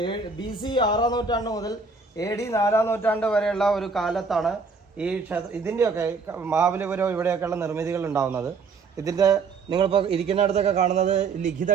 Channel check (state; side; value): quieter; left; 4.6 dB